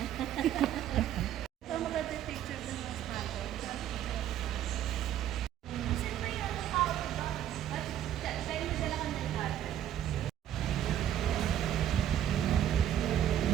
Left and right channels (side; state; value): left; quieter; 11.0 dB